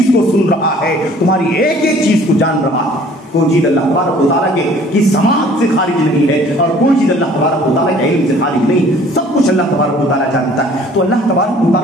کو سن رہا ہے، تمہاری ایک ایک چیز کو جان رہا ہے۔ کوئی چیز اللہ تبارک و تعالیٰ کی سماعت سے خارج نہیں ہے، اور کوئی چیز اللہ تبارک و تعالیٰ کے علم سے خارج نہیں، سب کچھ اللہ تبارک و تعالیٰ جانتا ہے۔ تو اللہ تبارک و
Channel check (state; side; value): normal; both; correlation 0.53